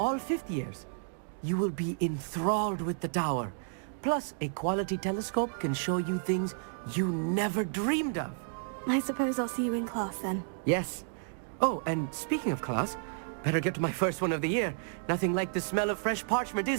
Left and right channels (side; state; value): left; silent; digital silence